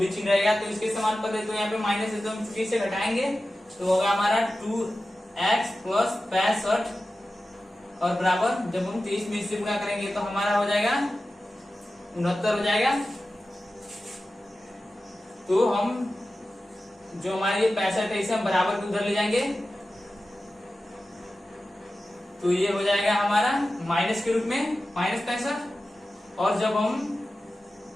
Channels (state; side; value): normal; both; correlation 0.94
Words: चिन्ह रहेगा। तो इसके समान पद है तो यहाँ पे माइनस है तो हम चूंकि इसे घटाएंगे तो होगा हमारा 2x प्लस 65 और बराबर जब हम 23 में इससे गुणा करेंगे तो हमारा हो जाएगा 69 हो जाएगा। तो हम जो हमारे 65 है इसे हम बराबर के उधर ले जाएंगे, तो ये हो जाएगा हमारा माइनस के रूप में -65, और जब हम